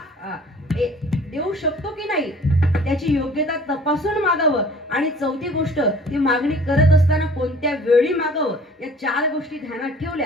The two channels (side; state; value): both; normal; correlation 0.50